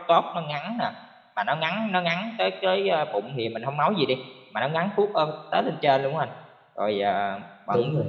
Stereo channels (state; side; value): identical; both; correlation 1.00